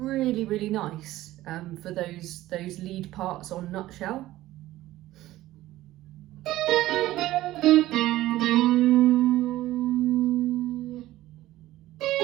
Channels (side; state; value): left; quieter; 15.8 dB